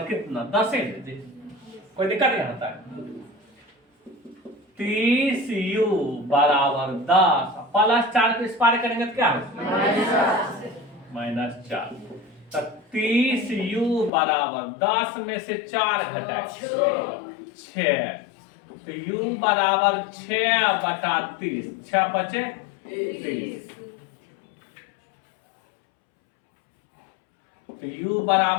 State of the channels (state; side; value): drops out; right; at 14.1 s